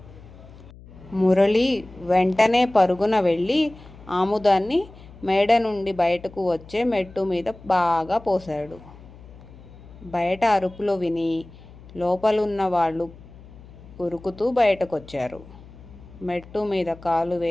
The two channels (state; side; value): noise; left; hum, 20 dB below the sound